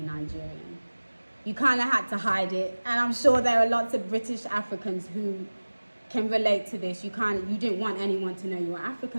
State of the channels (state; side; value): inverted; both; correlation -1.00